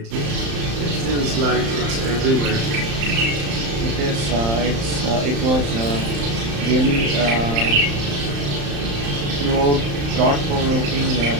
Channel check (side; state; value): left; late; 35 ms